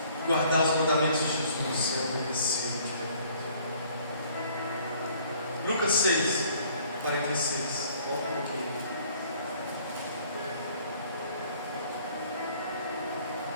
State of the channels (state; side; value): inverted; both; correlation -0.58